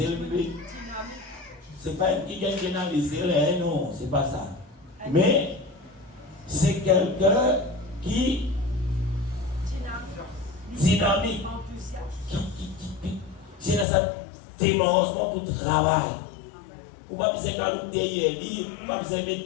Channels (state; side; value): drops out; right; at 13.9 s